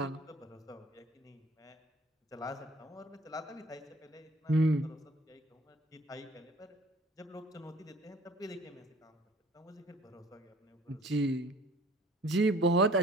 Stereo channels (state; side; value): normal; both; correlation 0.53